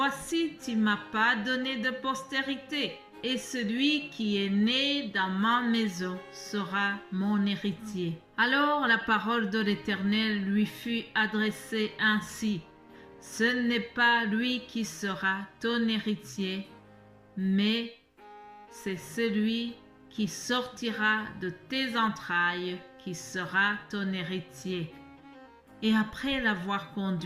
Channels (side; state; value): both; identical; correlation 1.00